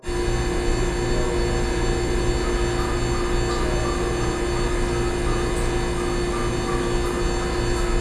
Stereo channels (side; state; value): both; identical; correlation 1.00